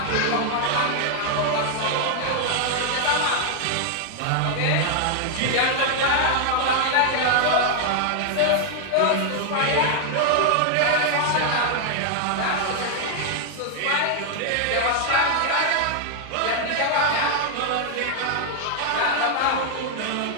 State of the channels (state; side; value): different; both; correlation 0.00